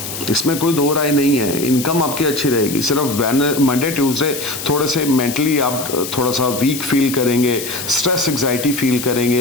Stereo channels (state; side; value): noise; left; hiss, 8 dB below the sound